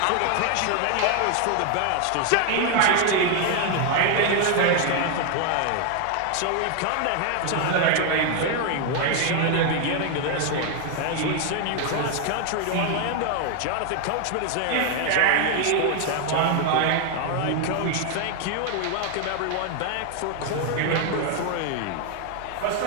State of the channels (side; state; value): both; different; correlation 0.00